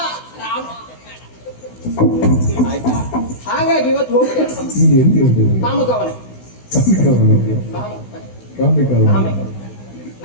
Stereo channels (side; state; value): right; late; 16 ms